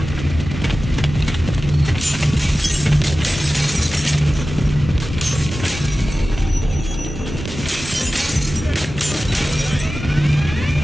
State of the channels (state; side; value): normal; both; correlation 0.95